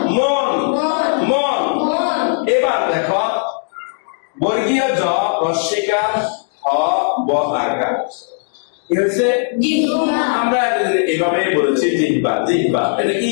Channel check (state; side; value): silent; right; digital silence